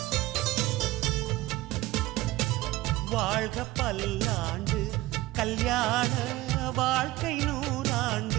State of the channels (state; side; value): quieter; left; 17.9 dB